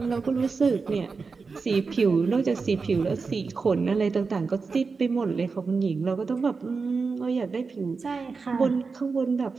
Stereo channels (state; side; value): quieter; left; 4.7 dB